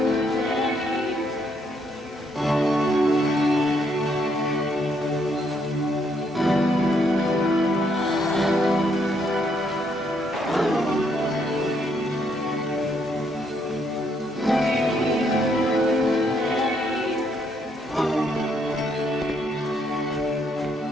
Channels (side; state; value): both; normal; correlation 0.73